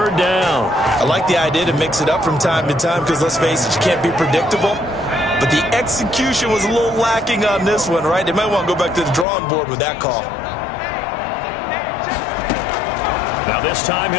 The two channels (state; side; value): drops out; right; at 9.2 s